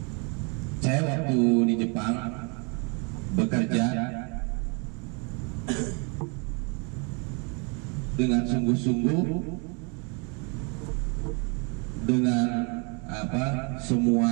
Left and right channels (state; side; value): quieter; left; 34.1 dB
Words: Saya waktu di Jepang bekerja dengan sungguh-sungguh, dengan semua